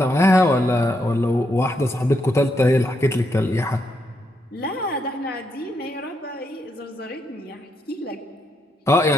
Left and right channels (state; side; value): normal; both; correlation 0.79